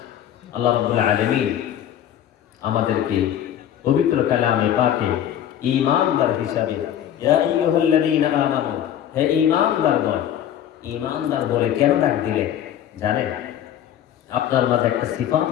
আল্লাহ রাব্বুল আলামিন আমাদেরকে পবিত্র কালামে পাকে ঈমানদার হিসাবে, ইয়া আইয়ুহাল্লাযীনা আমানু, হে ঈমানদারগণ, ঈমানদার বলে কেন ডাক দিলেন জানেন? আপনার মাঝে একটা সিফাত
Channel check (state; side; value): quieter; right; 10.6 dB